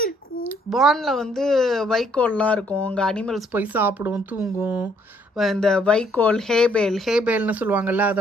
இருக்கும்? பார்னில் வந்து வைக்கோல்லாம் இருக்கும். அங்கே அனிமல்ஸ் போய் சாப்பிடும், தூங்கும். இந்த வைக்கோல், ஹேபேல்னு சொல்லுவாங்கல்ல,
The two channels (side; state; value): both; normal; correlation 0.67